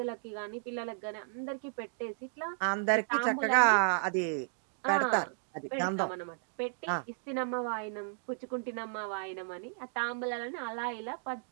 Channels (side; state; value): left; silent; digital silence